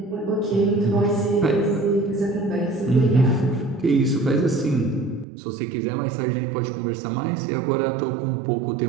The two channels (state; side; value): drops out; left; at 5.2 s